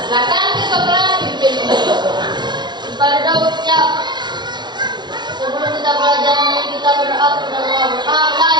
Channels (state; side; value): late; left; 0.21 ms